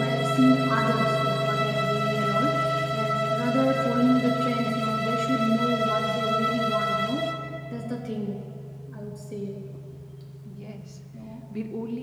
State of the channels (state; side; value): identical; both; correlation 1.00